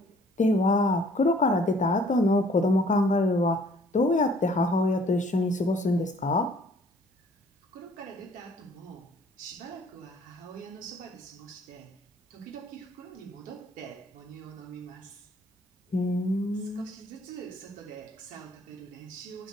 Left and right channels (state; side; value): normal; both; correlation 0.58